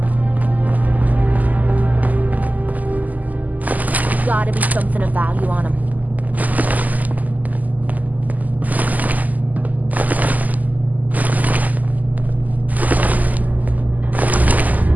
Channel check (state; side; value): late; left; 0.080 ms